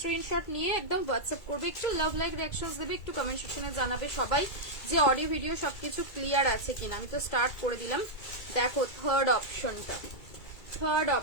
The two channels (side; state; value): right; late; 2.3 ms